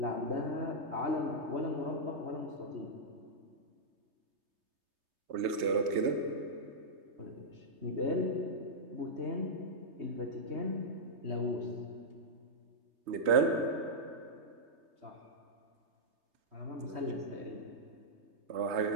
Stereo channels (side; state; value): left; late; 3.3 ms